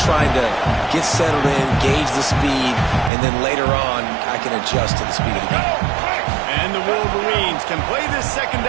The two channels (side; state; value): left; drops out; at 3.1 s